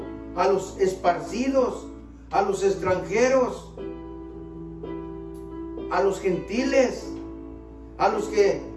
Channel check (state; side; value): identical; both; correlation 1.00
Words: a los esparcidos, a los extranjeros, a los gentiles, a los que